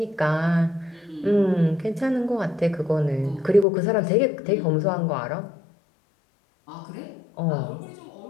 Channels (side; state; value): right; drops out; at 3.7 s